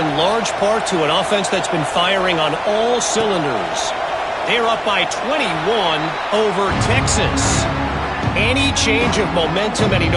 large part to an offense that's been firing on all cylinders. They're up by 21 over Texas. Any change of momentum, any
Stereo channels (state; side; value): identical; both; correlation 1.00